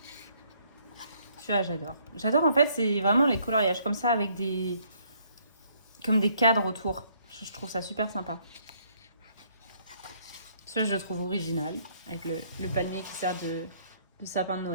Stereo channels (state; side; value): inverted; both; correlation -0.66